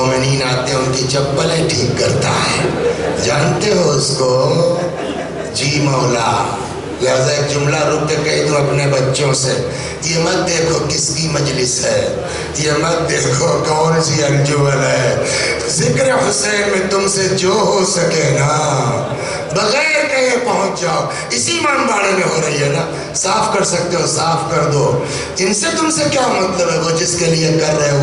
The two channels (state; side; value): identical; both; correlation 1.00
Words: آتے ہیں ان کی چپلیں ٹھیک کرتا ہے، جانتے ہو اس کو؟ جی مولا۔ لہذا ایک جملہ رک کے کہہ دوں اپنے بچوں سے، یہ مت دیکھو کس کی مجلس ہے، یہ مت دیکھو کون سی انجمن ہے، ذکر حسین میں تم سے جو ہو سکے نا بغیر کہیں پہنچ جاؤ، اسی امام باڑے میں ہو رہی ہے نا، صاف کر سکتے ہو صاف کر دو، ان سے تم سے کیا مطلب ہے، وہ جس کے لیے کر رہے